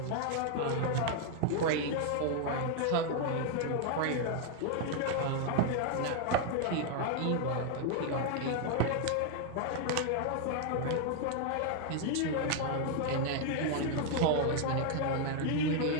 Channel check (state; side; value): different; both; correlation 0.00